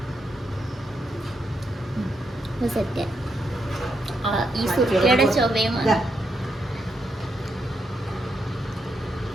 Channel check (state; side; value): normal; both; correlation 0.81